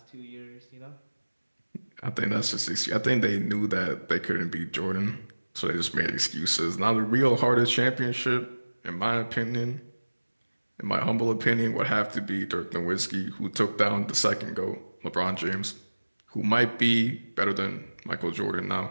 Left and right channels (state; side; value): inverted; both; correlation -1.00